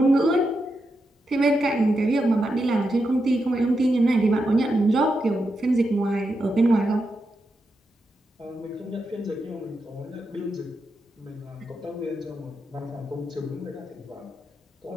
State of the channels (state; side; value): normal; both; correlation 0.86